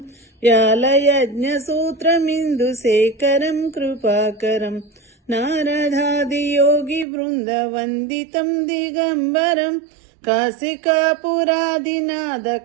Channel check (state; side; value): drops out; left; at 7.1 s